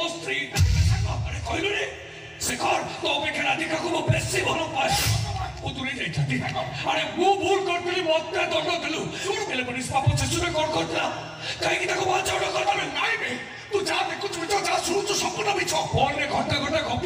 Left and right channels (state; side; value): identical; both; correlation 1.00